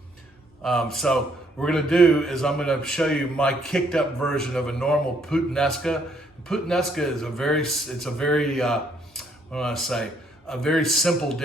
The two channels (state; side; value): normal; both; correlation 0.69